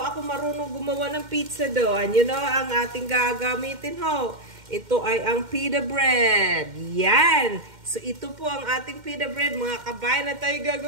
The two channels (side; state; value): left; late; 2.1 ms